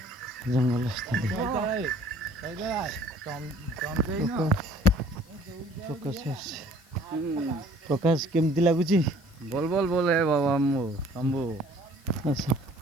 ଜଙ୍ଗଲ ସ୍ଥାନ। ପ୍ରକାଶ କେମିତି ଲାଗୁଛି? बोल है बाबा शंभू। ଆଚ୍ଛା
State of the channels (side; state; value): left; noise; hiss, 29 dB below the sound